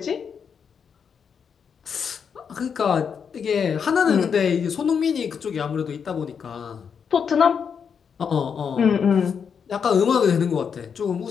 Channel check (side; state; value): right; quieter; 6.8 dB